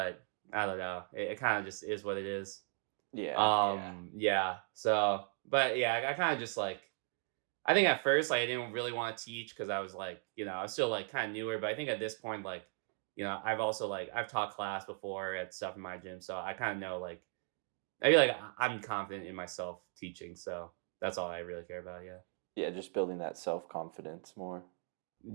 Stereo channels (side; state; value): left; silent; 53 dB below the other